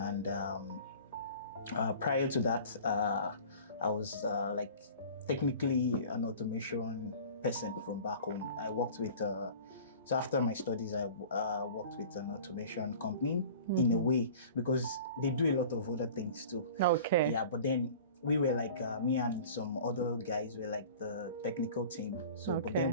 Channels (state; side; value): inverted; both; correlation -0.42